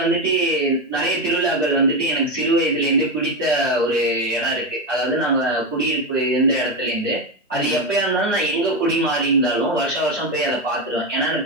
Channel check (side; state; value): both; normal; correlation 0.12